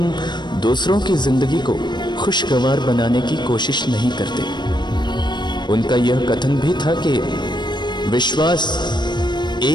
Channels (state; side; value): late; right; 0.22 ms